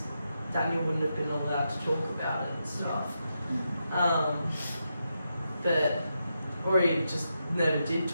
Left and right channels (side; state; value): both; inverted; correlation -0.85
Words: Daniel wouldn't have been allowed to talk about it and stuff. Or he just never did